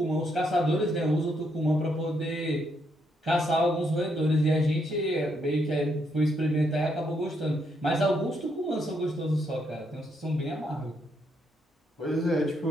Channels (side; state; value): both; normal; correlation 0.76